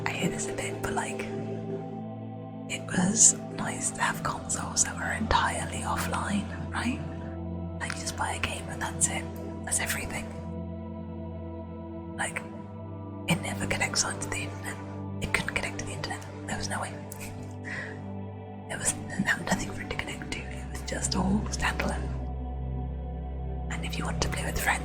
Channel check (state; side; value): identical; both; correlation 1.00